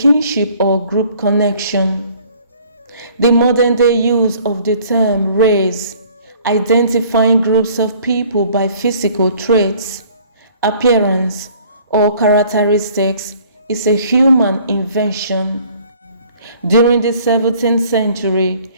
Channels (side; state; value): both; inverted; correlation -0.56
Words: or group connection. The modern-day use of the term race, identifying groups of people by physical traits, appearance, or characteristics, is a human invention. During the 17th